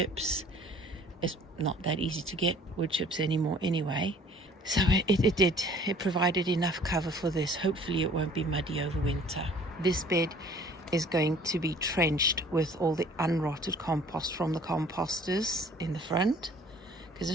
It's not that easy to get wood chips anymore anyway. So it provided enough cover for this. Hopefully it won't be muddy over winter. This bed is going to be trenched with all the unrotted compost from the composters in the front, because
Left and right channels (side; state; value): both; normal; correlation 0.52